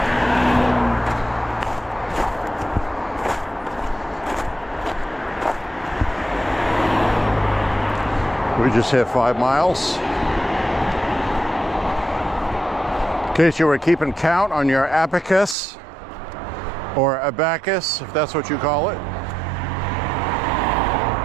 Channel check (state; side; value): drops out; left; at 15.6 s